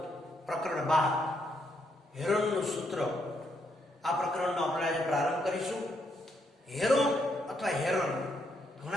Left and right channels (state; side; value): normal; both; correlation 0.76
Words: પ્રકરણ 12 હેરોનનું સૂત્ર. આ પ્રકરણનો આપણે આજે પ્રારંભ કરીશું. હેરોન અથવા હેરોન,